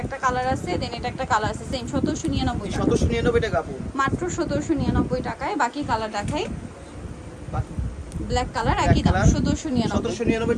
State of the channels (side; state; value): both; identical; correlation 1.00